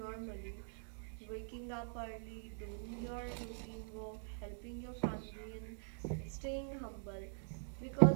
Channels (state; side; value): silent; left; digital silence